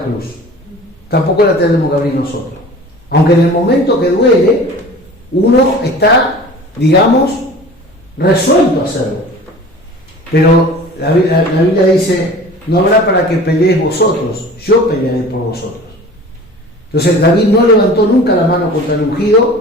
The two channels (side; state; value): both; normal; correlation 0.41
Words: cruz. Tampoco la tenemos que abrir nosotros. Aunque en el momento que duele, uno está, digamos, resuelto a hacerlo. Pero la Biblia dice, no habrá para que peleéis vosotros, yo pelearé por vosotros. Entonces David no levantó nunca la mano contra el